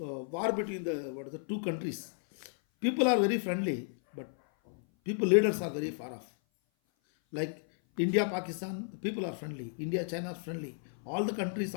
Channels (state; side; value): silent; right; 56 dB below the other